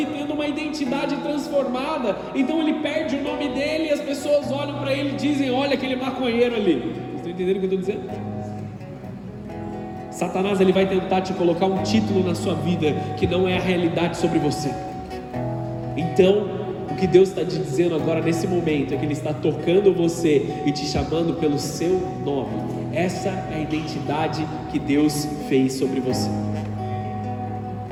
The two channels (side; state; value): both; identical; correlation 1.00